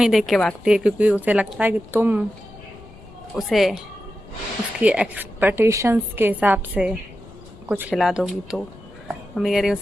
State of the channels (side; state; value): left; noise; rumble, 21 dB below the sound